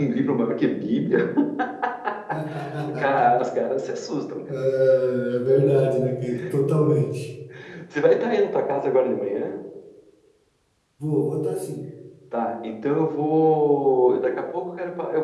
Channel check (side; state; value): both; identical; correlation 1.00